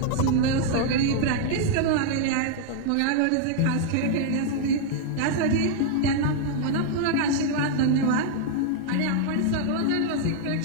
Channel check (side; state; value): both; different; correlation -0.01